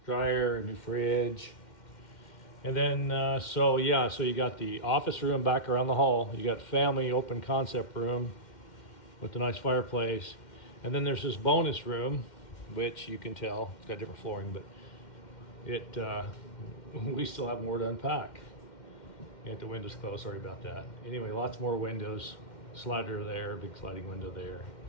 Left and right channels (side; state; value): right; late; 2.1 ms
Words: dryer, a new fridge. And then, so you got the office room back around the hall. You got family open concept room with a nice fireplace. And then there's this bonus room, which you can tell, it's got different flooring, but we still have more to unpack. Got the windows closed, sorry about that. Anyway, lots more windows, slider there, big sliding window there.